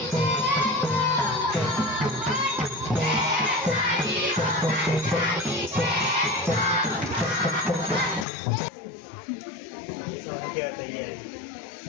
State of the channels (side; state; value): right; drops out; at 8.2 s